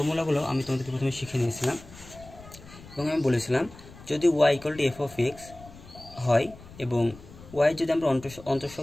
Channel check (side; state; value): left; noise; rumble, 19 dB below the sound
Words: আমি তোমাদেরকে প্রথমে শিখে নিয়েছিলাম এবং আমি বলেছিলাম যদি y = f(x) হয় এবং y যদি আমরা